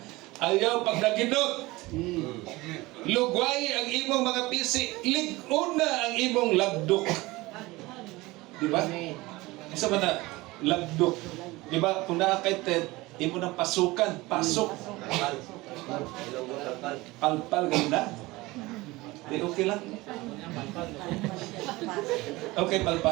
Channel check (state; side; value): quieter; left; 20.9 dB